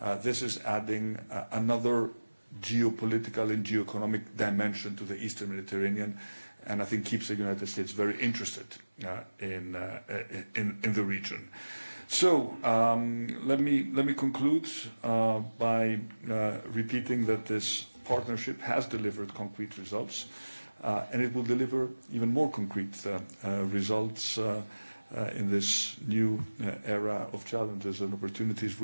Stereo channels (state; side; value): inverted; both; correlation -1.00